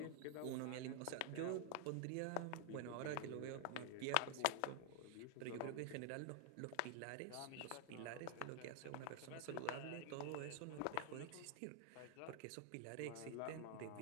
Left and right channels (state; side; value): different; both; correlation 0.00